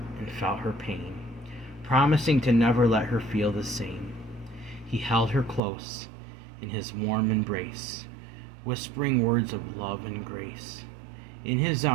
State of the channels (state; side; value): drops out; left; at 5.6 s